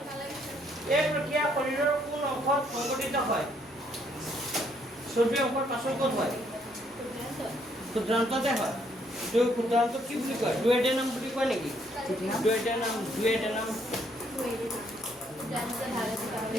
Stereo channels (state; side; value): normal; both; correlation 0.69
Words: এই প্ৰক্ৰিয়া শৰীৰৰ কোন অংশত সংঘটিত হয় চৰ্বিৰ অংশৰ পাচন ক'ত হয় ক্ষুদ্ৰান্ততে হয় এইটো ক্ষুদ্ৰান্ত কি বুলি কয় ডুয়েডেনাম বুলি কয় নেকি ডুয়েডেনাম